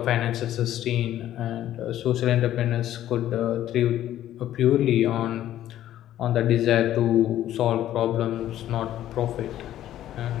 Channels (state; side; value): quieter; right; 12.5 dB